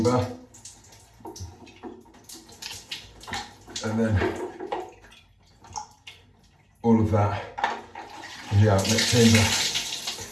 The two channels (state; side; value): identical; both; correlation 1.00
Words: and then all of that in the outlet chamber.